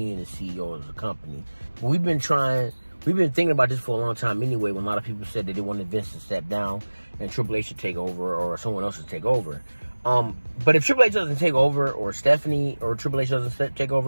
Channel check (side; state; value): both; inverted; correlation -1.00